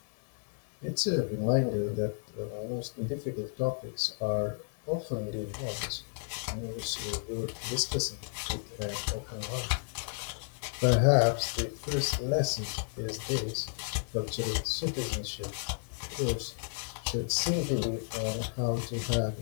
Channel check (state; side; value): silent; right; digital silence